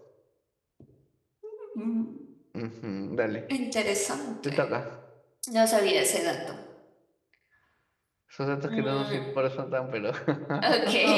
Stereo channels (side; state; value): both; identical; correlation 1.00